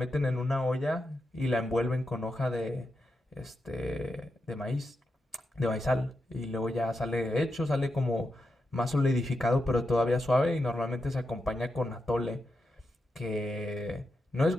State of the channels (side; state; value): both; normal; correlation 0.87